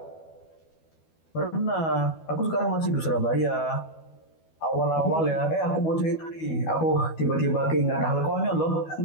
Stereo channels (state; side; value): late; right; 12 ms